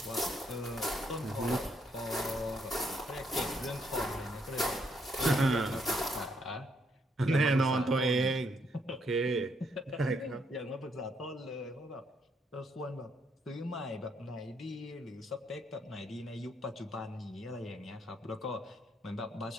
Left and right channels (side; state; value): both; normal; correlation 0.73